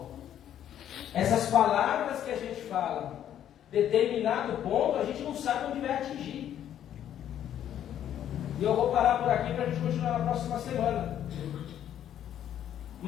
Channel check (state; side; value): quieter; right; 10.5 dB